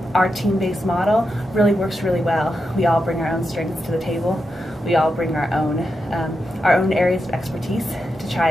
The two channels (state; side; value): normal; both; correlation 0.87